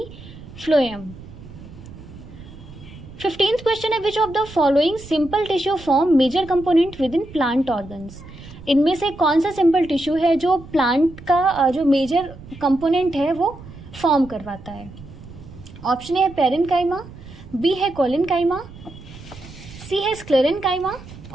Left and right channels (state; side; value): noise; right; rumble, 17 dB below the sound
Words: फ्लोएम। 15th क्वेश्चन है which of the following simple tissue form major component within plant organs. इनमें से कौन सा सिंपल टिश्यू है जो प्लांट का जो मेजर कंपोनेंट है वो फॉर्म करवाता है? ऑप्शन ए है पेरेन्काइमा, बी है कोलेनकाइमा, सी है स्क्लेरेनकाइमा